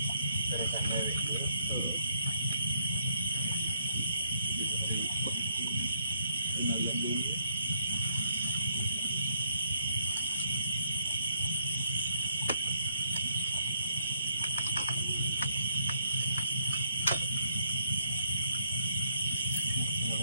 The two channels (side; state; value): both; inverted; correlation -0.71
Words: Beresan lewe dulu. Kenalian dulu.